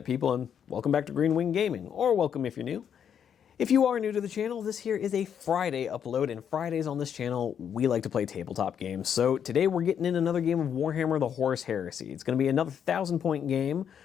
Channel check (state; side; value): quieter; right; 8.3 dB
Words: people, and welcome back to Green Wing Gaming, or welcome if you're new. If you are new to the channel, this here is a Friday upload, and Fridays on this channel, we like to play tabletop games. So today we're getting in another game of Warhammer the Horus Heresy. It's going to be another 1,000-point game.